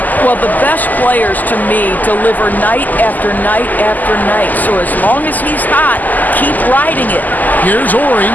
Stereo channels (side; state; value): right; late; 0.083 ms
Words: Well, the best players, to me, deliver night after night after night. So as long as he's hot, keep riding it. Here's Ori.